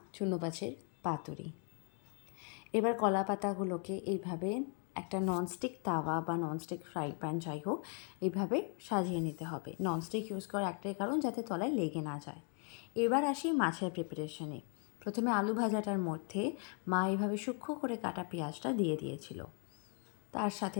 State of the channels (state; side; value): quieter; right; 39.7 dB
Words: চুনো মাছের পাতুরি। এবার কলা পাতাগুলোকে এইভাবে একটা ননস্টিক তাওয়া বা ননস্টিক ফ্রাই প্যান যাই হোক, এইভাবে সাজিয়ে নিতে হবে। ননস্টিক ইউজ করার একটাই কারণ, যাতে তলায় লেগে না যায়। এবার আসি মাছের প্রিপারেশনে। প্রথমে আলু ভাজাটার মধ্যে মা এইভাবে সূক্ষ্ম করে কাটা পেঁয়াজটা দিয়ে দিয়েছিল, তার সাথে